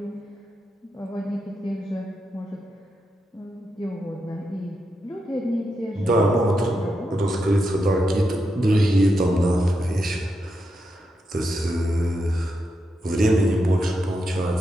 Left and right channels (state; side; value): normal; both; correlation 0.85